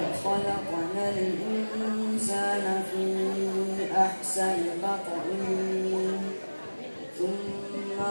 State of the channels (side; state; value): both; inverted; correlation -1.00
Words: خلقنا الإنسان في أحسن تقويم ثم